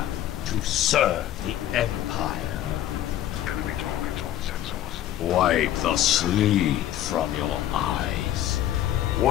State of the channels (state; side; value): quieter; right; 12.3 dB